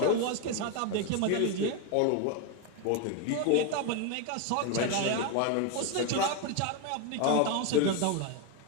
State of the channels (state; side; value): different; both; correlation 0.02